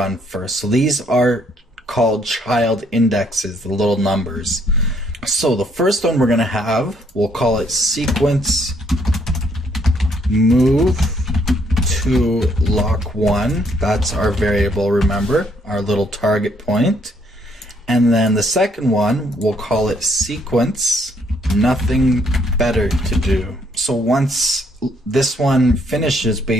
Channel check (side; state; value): both; normal; correlation 0.68